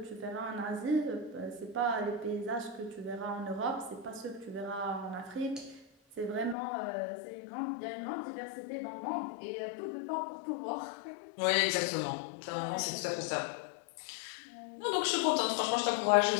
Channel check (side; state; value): right; drops out; at 6.6 s